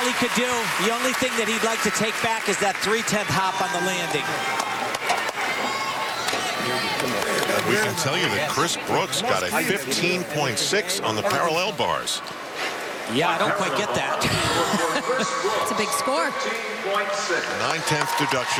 he could do. The only thing that he'd like to take back is that 3/10 hop on the landing. We can tell you that Chris Brooks got a 15.6 on the parallel bars. Yeah, I don't quite get that. It's a big score. 9/10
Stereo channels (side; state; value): both; identical; correlation 1.00